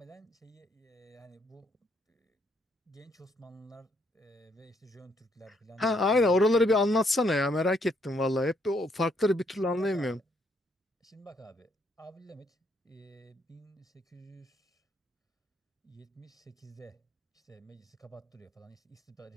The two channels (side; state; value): both; normal; correlation 0.71